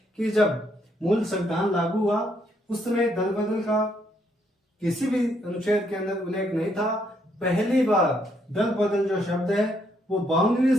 कि जब मूल संविधान लागू हुआ उस समय दल बदल का किसी भी अनुच्छेद के अंदर उल्लेख नहीं था। पहली बार दल बदल जो शब्द है वो 52वें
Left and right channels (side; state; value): both; normal; correlation 0.73